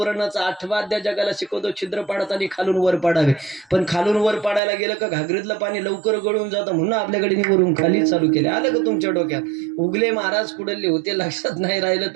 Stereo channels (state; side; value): drops out; left; at 4.6 s